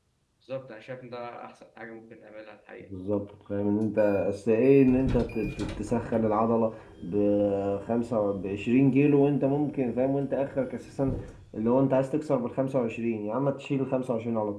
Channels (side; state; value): both; identical; correlation 1.00